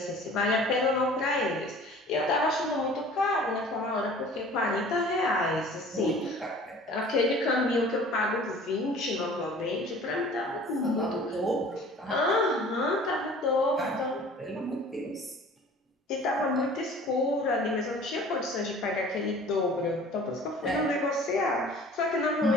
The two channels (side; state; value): both; normal; correlation 0.46